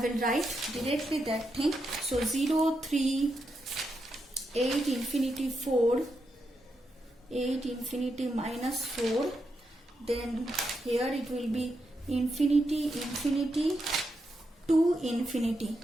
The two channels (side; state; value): both; normal; correlation 0.84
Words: write directly that thing. So 0, 3, 8, infinity 4, 8, infinity minus 4. Then here it will be infinity, infinity, 2, infinity.